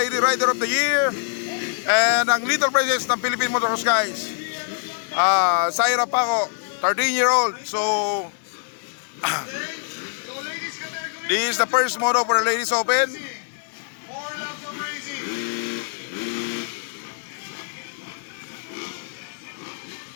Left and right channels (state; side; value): silent; right; digital silence